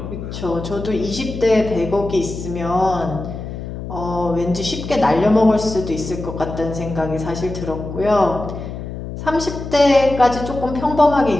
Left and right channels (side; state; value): left; noise; hum, 8 dB below the sound